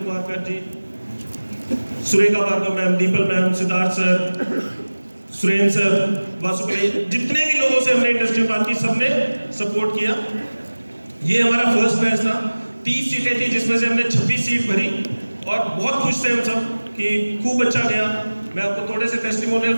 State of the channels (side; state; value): both; inverted; correlation -1.00